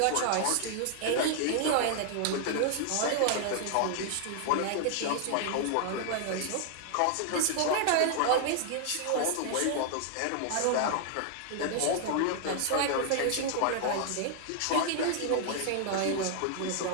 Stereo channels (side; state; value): both; different; correlation -0.01